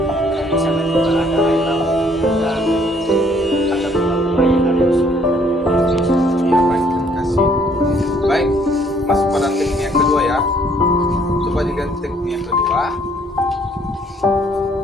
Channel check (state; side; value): normal; both; correlation 0.63